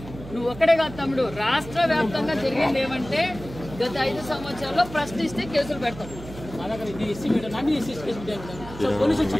నువ్వు ఒక్కడే కాదు తమ్ముడు. రాష్ట్ర వ్యాప్తంగా జరిగింది ఏమంటే గత 5 సంవత్సరాల్లో ప్రశ్నిస్తే కేసులు పెడతాం.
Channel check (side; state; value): right; noise; hum, 14 dB below the sound